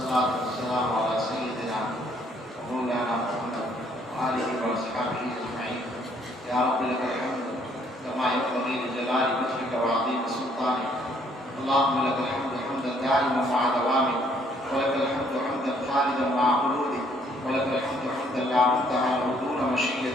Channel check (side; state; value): both; normal; correlation 0.65